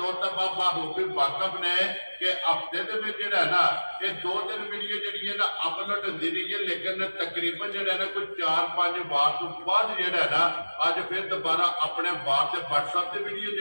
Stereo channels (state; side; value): inverted; both; correlation -1.00